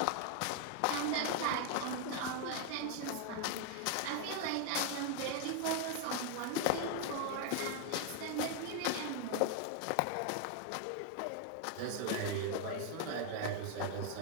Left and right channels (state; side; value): different; both; correlation 0.00